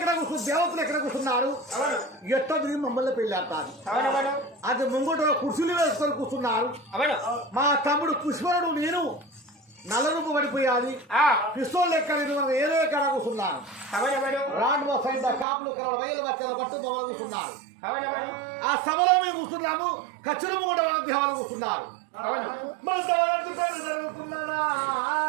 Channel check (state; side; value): drops out; left; at 15.5 s